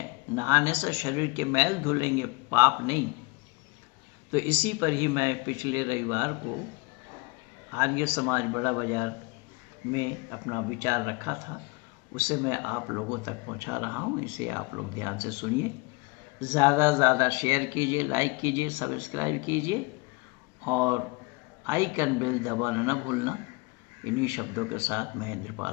नहाने से शरीर के मैल धुलेंगे, पाप नहीं। तो इसी पर ही मैं पिछले रविवार को आर्य समाज बड़ा बाजार में अपना विचार रखा था, उसे मैं आप लोगों तक पहुंचा रहा हूं। इसे आप लोग ध्यान से सुनिए, ज़्यादा से ज़्यादा शेयर कीजिए, लाइक कीजिए, सब्सक्राइब कीजिए और आइकन बेल दबाना न भूलना। इन्हीं शब्दों के साथ मैं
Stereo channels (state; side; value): quieter; right; 26.8 dB